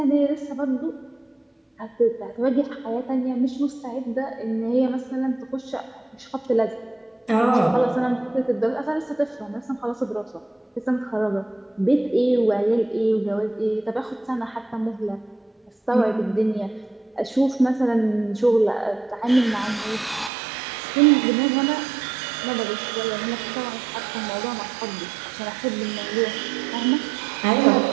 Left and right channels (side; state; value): left; drops out; at 20.3 s